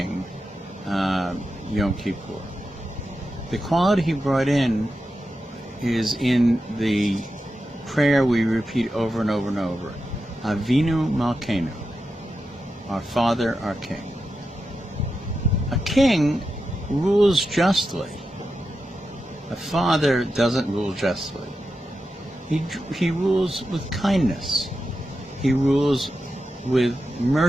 Yom Kippur? The quality he brought in is in the prayer we repeat over and over and over. Avinu Malkeinu, our Father, our King. A king rules justly. A father doesn't rule justly. He rules with kindness. He rules with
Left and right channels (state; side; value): normal; both; correlation 0.89